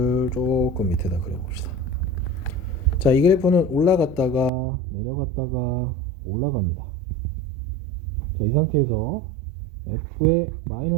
조금 밑에다 그려봅시다. 자, 이 그래프는 올라갔다가 내려갔다가 올라갑니다. 자, 이 상태에서 f의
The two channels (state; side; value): drops out; left; at 4.5 s